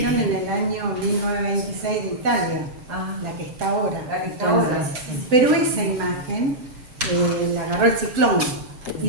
en el año 1926 de Italia, Ah, la que está ahora. la que está ahora. Pero esa imagen la agarró el ciclón y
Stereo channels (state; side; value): late; left; 7.7 ms